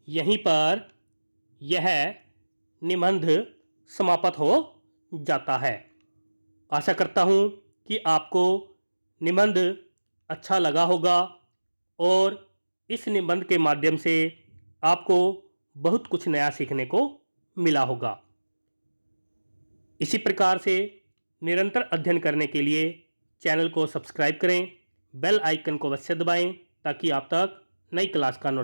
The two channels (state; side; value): inverted; both; correlation -1.00